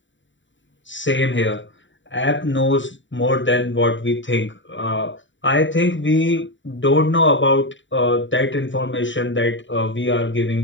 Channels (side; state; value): right; late; 0.54 ms